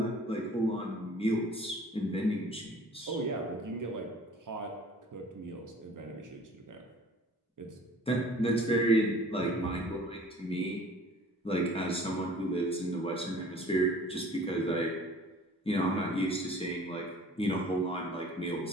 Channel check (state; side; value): normal; both; correlation 0.49